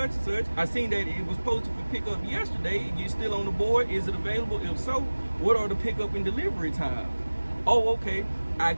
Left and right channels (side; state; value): both; inverted; correlation -1.00